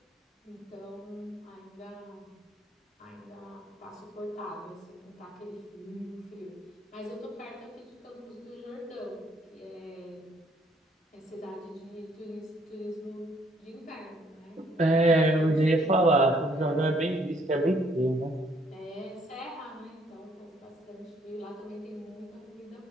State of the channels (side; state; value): both; normal; correlation 0.66